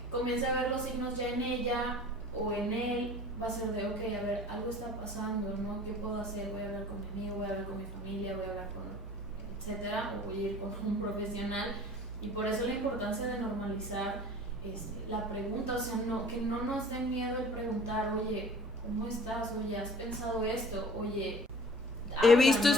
comience a ver los signos ya en ella o en él, va a ser de, ok, a ver, algo está pasando, ¿no? ¿Qué puedo hacer? Voy a hablar con mi amigo, voy a hablar con mi familia, voy a hablar con etcétera, o voy a ir con un profesional. Y por eso la importancia de normalizar la pregunta, o sea, que no nos dé miedo el preguntar, oye, ¿cómo estás? Oye, ¿has pensado esto? Oye, he visto, ¿no?,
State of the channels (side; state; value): both; normal; correlation 0.45